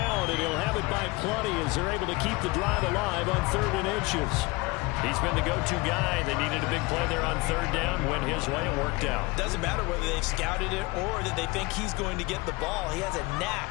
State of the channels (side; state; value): right; quieter; 23.9 dB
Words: and he'll have it by plenty as they're able to keep the drive alive on 3rd and inches. He's been the go-to guy. They needed a big play there on 3rd down. Went his way. It worked out. Doesn't matter whether they've scouted it or that they think he's going to get the ball. He has a